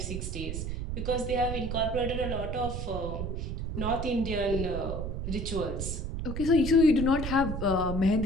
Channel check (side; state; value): right; noise; rumble, 4 dB below the sound